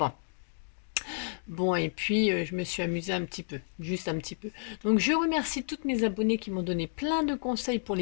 Bon, et puis je me suis amusée un petit peu, juste un petit peu. Donc je remercie toutes mes abonnées qui m'ont donné plein de conseils pour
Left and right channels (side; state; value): right; silent; digital silence